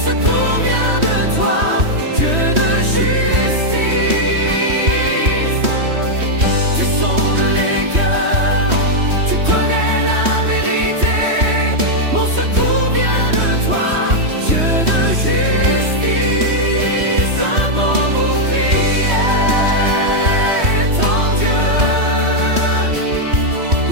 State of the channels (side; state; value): left; late; 3.1 ms